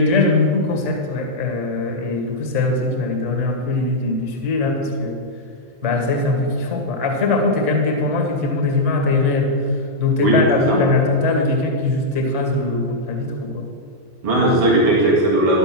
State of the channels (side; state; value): left; late; 1.7 ms